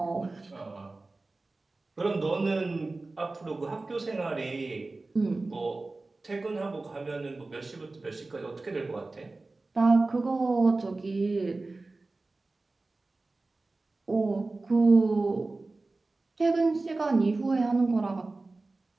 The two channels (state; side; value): quieter; left; 3.3 dB